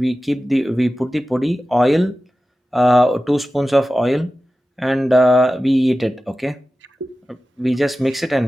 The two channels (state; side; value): normal; both; correlation 0.95